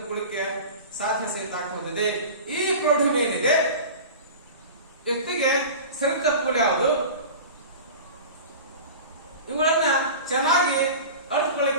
ಸಾಧ್ಯ ಸಹಿತ ಆಗ್ತಾ ಹೋಗ್ತದೆ. ಈ ಪ್ರೌಢಿಮೆ ಏನಿದೆ ವ್ಯಕ್ತಿಗೆ ಸರಿ ತಪ್ಪುಗಳು ಯಾವುದು, ಇವುಗಳನ್ನ ಚೆನ್ನಾಗಿ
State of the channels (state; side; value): inverted; both; correlation -0.35